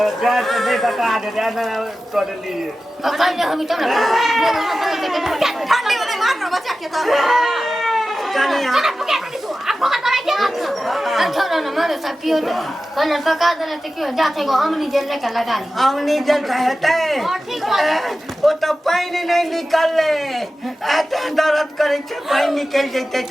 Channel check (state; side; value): normal; both; correlation 0.94